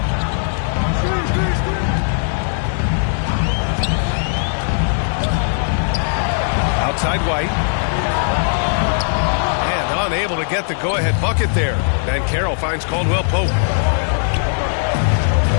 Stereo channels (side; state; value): right; silent; 60 dB below the other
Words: Outside White. And unable to get the go-ahead bucket there. Bancaro finds Caldwell Pope.